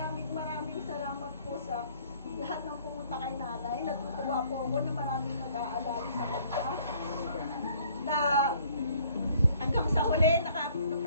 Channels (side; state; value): both; inverted; correlation -0.59